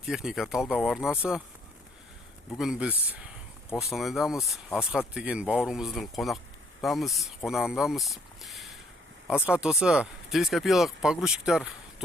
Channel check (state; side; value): normal; both; correlation 0.66